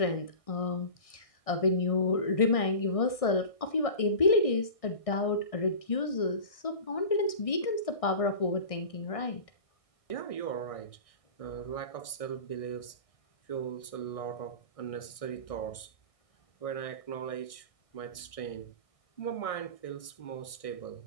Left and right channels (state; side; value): late; right; 1.6 ms